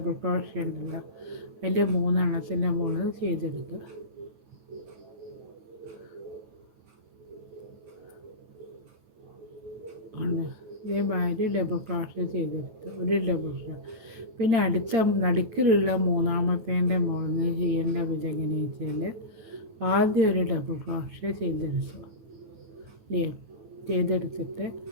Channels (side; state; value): left; late; 9.3 ms